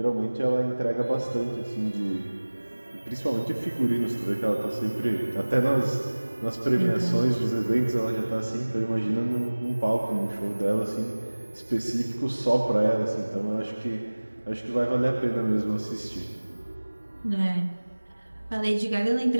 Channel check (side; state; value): both; inverted; correlation -1.00